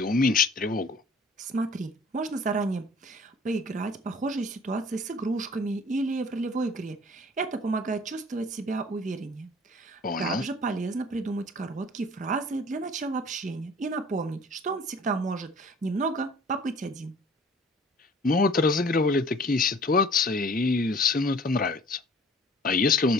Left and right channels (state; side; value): normal; both; correlation 0.50